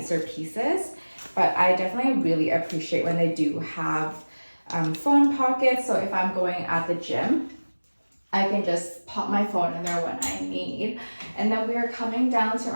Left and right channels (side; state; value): both; inverted; correlation -1.00